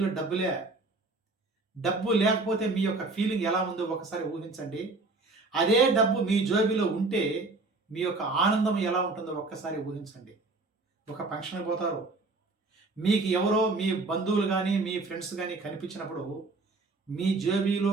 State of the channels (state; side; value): quieter; left; 3.4 dB